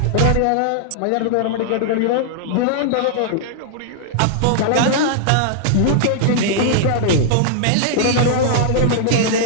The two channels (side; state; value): both; different; correlation -0.01